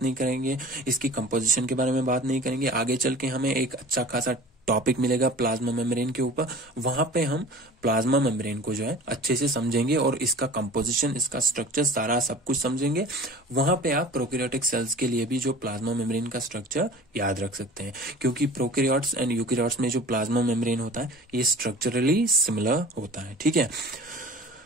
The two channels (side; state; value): both; normal; correlation 0.42